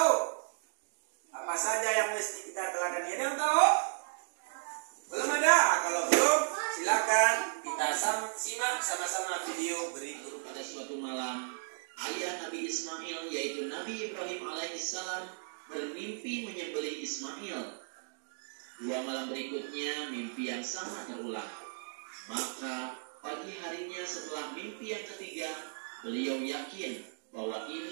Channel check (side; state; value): left; silent; digital silence